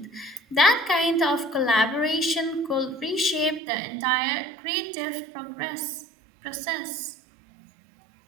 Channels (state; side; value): drops out; left; at 3.6 s